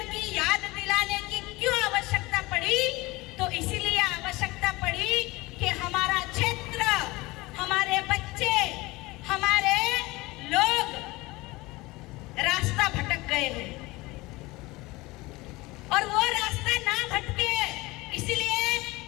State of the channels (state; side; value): quieter; right; 21.6 dB